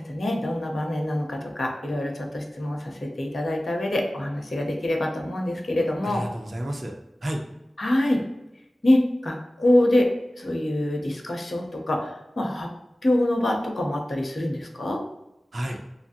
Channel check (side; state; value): both; normal; correlation 0.96